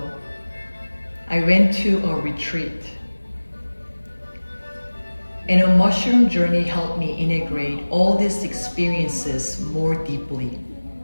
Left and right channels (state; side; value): inverted; both; correlation -1.00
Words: I went to a retreat, and a mushroom journey helped me integrate all these experiences more deeply.